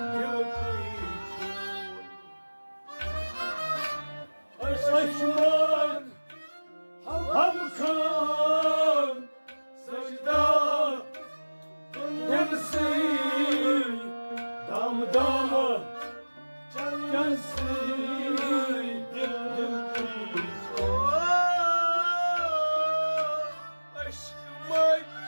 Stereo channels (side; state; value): both; inverted; correlation -1.00